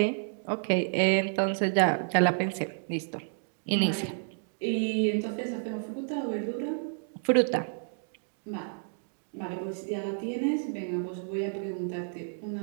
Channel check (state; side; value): silent; left; digital silence